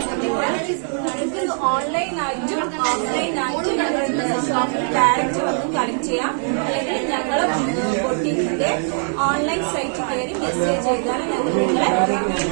ഓൺലൈനായിട്ടും ഓഫ്ലൈനായിട്ടും ഞങ്ങളുടെ ഷോപ്പിൽ ഡയറക്റ്റ് വന്ന് കളക്ട് ചെയ്യാം. അല്ലെങ്കിൽ ഞങ്ങളെ ബൊട്ടീക്കിന്റെ ഓൺലൈൻ സൈറ്റ് കയറി മെസ്സേജ് ചെയ്താണ് ഞങ്ങൾ നിങ്ങളെ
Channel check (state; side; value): silent; left; 59 dB below the other